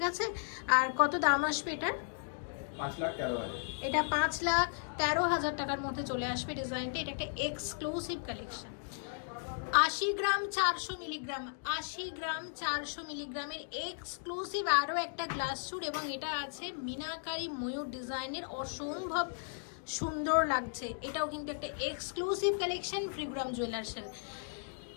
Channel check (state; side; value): silent; right; digital silence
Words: আছে। আর কত দাম আসবে এটার? 5,13,000। এটা 5,13,000 টাকার মধ্যে চলে আসবে ডিজাইনটা। এটা একটা এক্সক্লুসিভ কালেকশন। 80 গ্রাম 400 মিলিগ্রাম, 80 গ্রাম 400 মিলিগ্রামের এক্সক্লুসিভ আরও একটা গ্লাস স্যুট এবং এটা আছে মিনাকারি ময়ূর ডিজাইনের, অসম্ভব সুন্দর লাগছে। এটাও কিন্তু একটা এক্সক্লুসিভ কালেকশন ফ্রিগ্রাম জুয়েলার্সের।